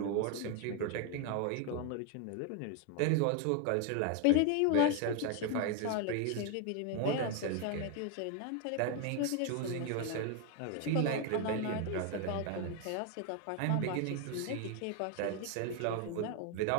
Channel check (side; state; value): both; different; correlation 0.01